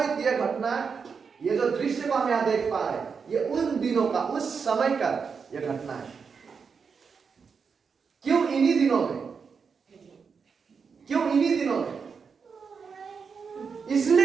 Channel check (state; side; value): quieter; left; 5.8 dB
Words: यह घटना, ये जो दृश्य को हम यहाँ देख पा रहे हैं, ये उन दिनों का, उस समय का यह घटना है। क्यों इन्हीं दिनों में? क्यों इन्हीं दिनों में?